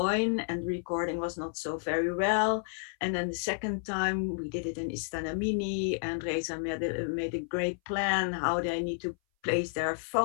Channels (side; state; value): right; silent; 57 dB below the other